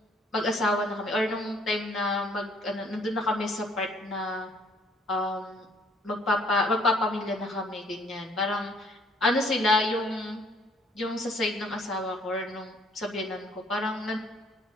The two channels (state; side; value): normal; both; correlation 0.62